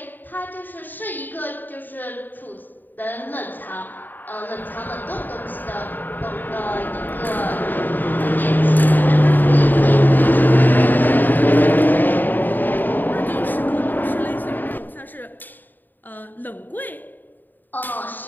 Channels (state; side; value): late; right; 0.089 ms